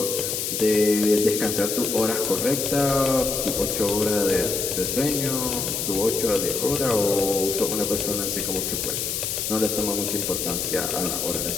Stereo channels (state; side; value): noise; left; hiss, 2 dB below the sound